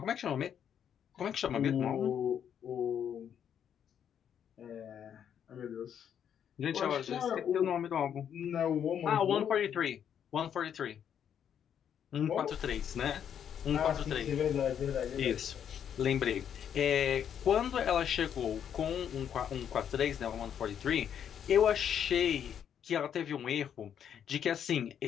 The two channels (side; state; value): right; quieter; 8.8 dB